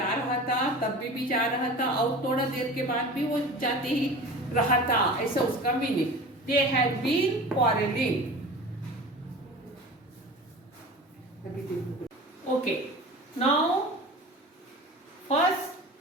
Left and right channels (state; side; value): normal; both; correlation 0.37